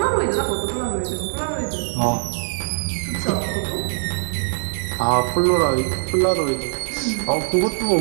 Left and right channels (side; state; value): left; silent; digital silence